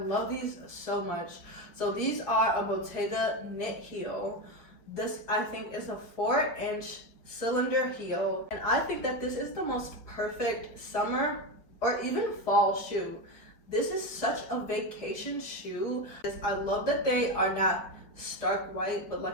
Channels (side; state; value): right; late; 4.7 ms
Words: these so much. So these are a Bottega knit heel. This, I think, is a 4-inch cylinder heel. And I think that this is the most perfect summer or even fall shoe. This is such a vacation shoe. I love that they are not stark white, but